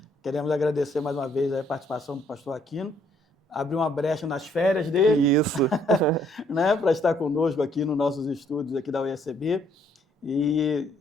Queremos agradecer mais uma vez a participação do pastor Aquino, abrir uma brecha nas férias dele. Isso. Né, para estar conosco aqui nos nossos estúdios aqui da UECB e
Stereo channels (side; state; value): both; normal; correlation 0.67